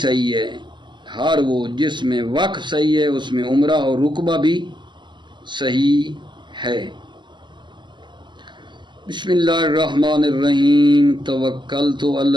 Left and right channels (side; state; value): left; late; 0.22 ms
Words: صحیح ہے۔ ہر وہ جس میں وقف صحیح ہے اس میں عمرہ اور رقبہ بھی صحیح ہے۔ بسم اللہ الرحمن الرحیم، توکلت علی